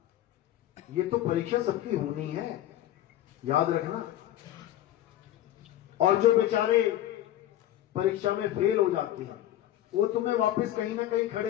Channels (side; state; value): right; quieter; 13.0 dB